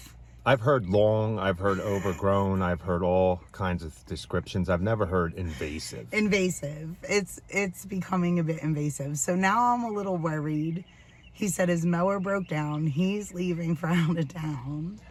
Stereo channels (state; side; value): identical; both; correlation 1.00